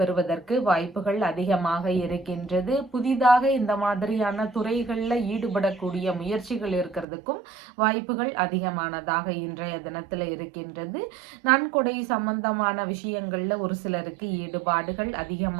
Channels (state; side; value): drops out; left; at 7.1 s